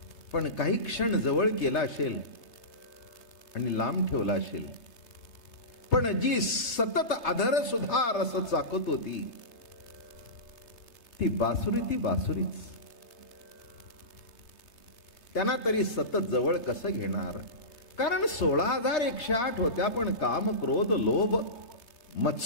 पण काही क्षण जवळ केला असेल आणि लांब ठेवला असेल, पण जी सतत अधर सुद्धा रस चाकत होती ती बासुरीच. त्यांना तरी सतत जवळ कसं घेणार? कारण 16,108 होत्या, पण काम, क्रोध, लोभ,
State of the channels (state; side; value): late; right; 3.3 ms